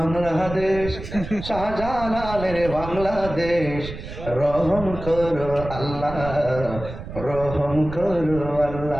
শাহজালালের বাংলাদেশ, রহম করো আল্লাহ, রহম করো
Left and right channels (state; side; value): noise; right; rumble, 10 dB below the sound